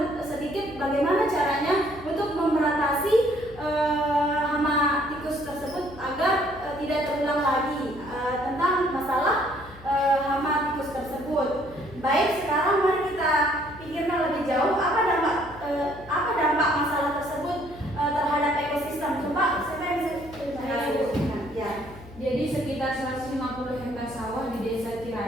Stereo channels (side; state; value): left; noise; hum, 19 dB below the sound